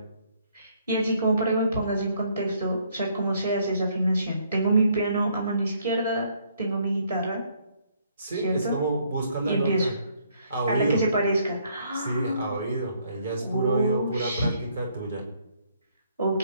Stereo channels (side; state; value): both; inverted; correlation -0.68